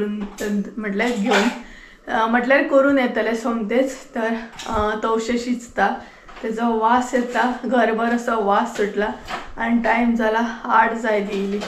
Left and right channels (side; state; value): both; identical; correlation 1.00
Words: म्हटल्यार घेवन म्हटल्यार करून येतलें सोमतेच. तर तवशे शिजता तेजो वास येता घरभर असो वास सुटला आनी टायम जाला 8 जाय दिली.